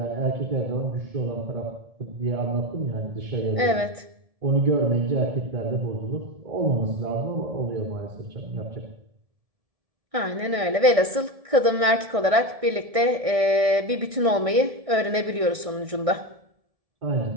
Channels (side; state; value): left; late; 1.6 ms